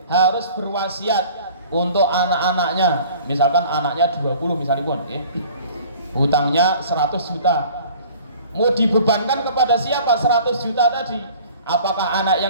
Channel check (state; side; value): inverted; both; correlation -0.48